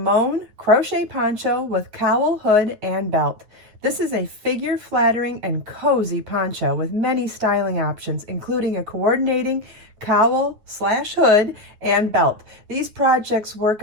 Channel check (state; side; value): late; left; 9.4 ms